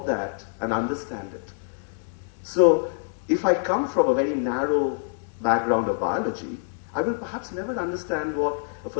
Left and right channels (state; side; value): silent; right; digital silence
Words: that and understand it? So if I come from a very narrow background of biology, I will perhaps never understand what a